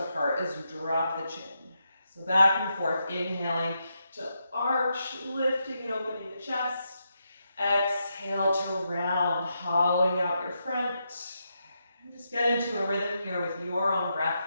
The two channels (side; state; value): both; inverted; correlation -0.83